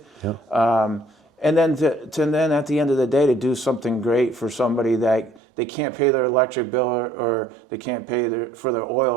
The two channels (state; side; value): drops out; left; at 5.4 s